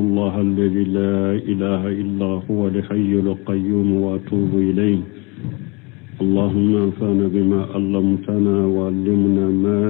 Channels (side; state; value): right; quieter; 28.1 dB